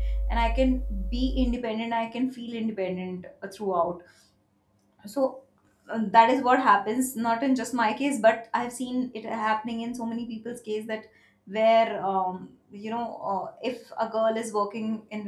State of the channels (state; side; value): identical; both; correlation 1.00